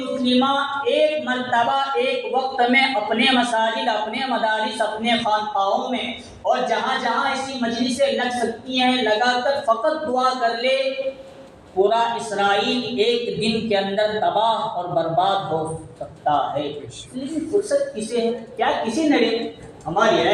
ایک مرتبہ ایک وقت میں اپنے مساجد، اپنے مدارس، اپنے خانقاہوں میں اور جہاں جہاں ایسی مجلسیں لگ سکتی ہیں لگا کر فقط دعا کر لے، پورا اسرائیل ایک دن کے اندر تباہ اور برباد ہو سکتا ہے۔ لیکن فرصت کسے ہے؟ کیا کسی نڑے؟ ہماری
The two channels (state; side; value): identical; both; correlation 1.00